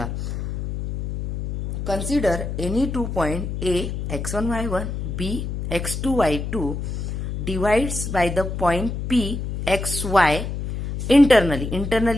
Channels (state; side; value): noise; left; hum, 4 dB below the sound